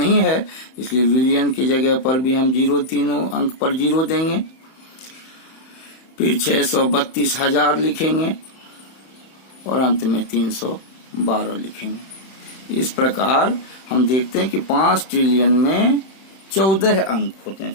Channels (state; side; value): late; right; 31 ms